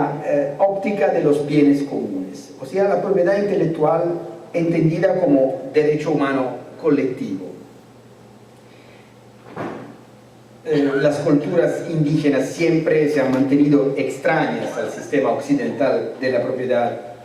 óptica de los bienes comunes, o sea, la propiedad intelectual entendida como derecho humano colectivo. Las culturas indígenas siempre se han mantenido extrañas al sistema occidental de la propiedad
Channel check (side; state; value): both; identical; correlation 1.00